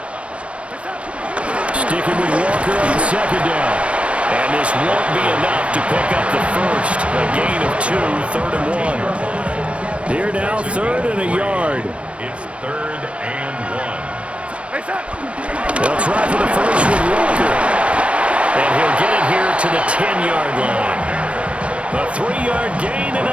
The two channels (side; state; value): left; late; 0.061 ms